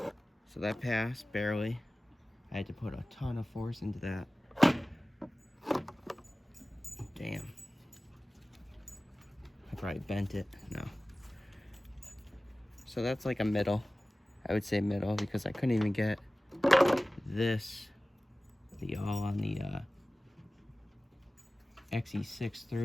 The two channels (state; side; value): normal; both; correlation 0.97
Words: So that passed, barely. I had to put a ton of force into that. Damn. I probably bent it. No. So that's like a middle. I would say middle because I couldn't even get this, the all on the XE6